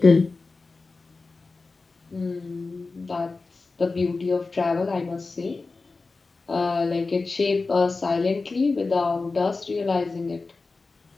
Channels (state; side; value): quieter; right; 3.8 dB